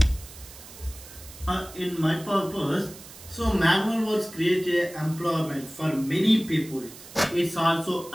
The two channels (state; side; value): noise; right; hiss, 17 dB below the sound